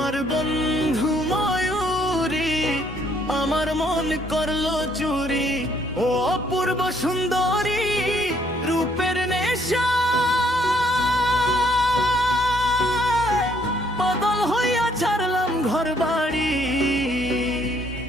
বন্ধু ময়ূরী আমার মন করলো চুরি। ও অপূর্ব সুন্দরী রূপের নেশা পাগল হইয়া ছাড়লাম ঘর বাড়ি।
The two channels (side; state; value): both; normal; correlation 0.67